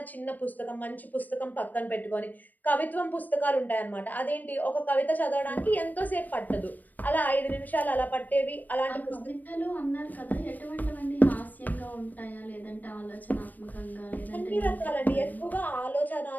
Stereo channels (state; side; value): late; right; 0.084 ms